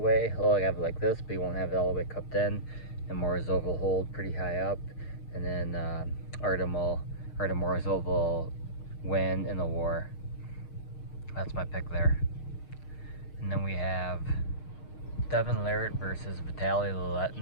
He'll have it like this, but he won't have it all the way cupped in. And Morozov will hold pretty high up, and then Artem Morozov will win in the war. That's my pick there. And then we have Devin Larratt versus Vitali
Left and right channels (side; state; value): right; late; 6.5 ms